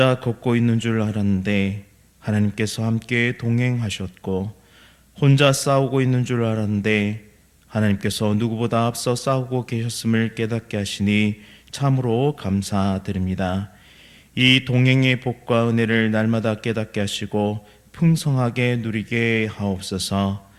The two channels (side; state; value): both; identical; correlation 1.00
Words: 걷고 있는 줄 알았는데 하나님께서 함께 동행하셨고, 혼자 싸우고 있는 줄 알았는데 하나님께서 누구보다 앞서 싸우고 계셨음을 깨닫게 하시니 참으로 감사드립니다. 이 동행의 복과 은혜를 날마다 깨닫게 하시고 풍성하게 누리게 하옵소서.